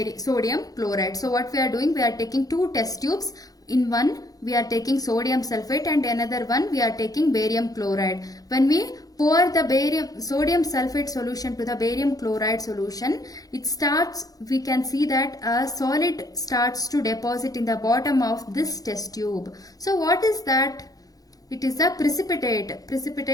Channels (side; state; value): right; late; 0.18 ms